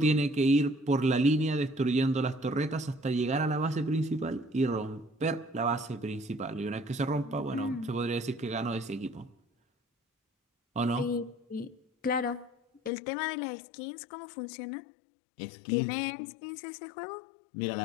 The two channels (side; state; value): right; drops out; at 12.9 s